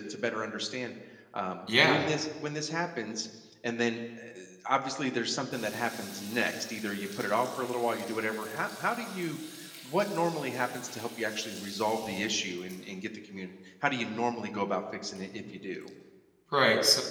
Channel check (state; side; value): identical; both; correlation 1.00